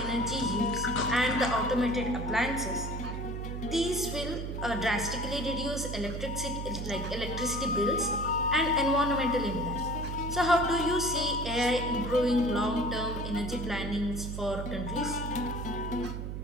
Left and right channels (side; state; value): right; noise; hum, 5 dB below the sound